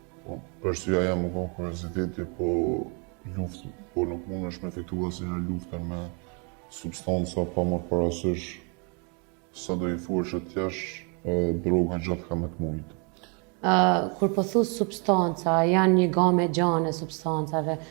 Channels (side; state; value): left; quieter; 35.4 dB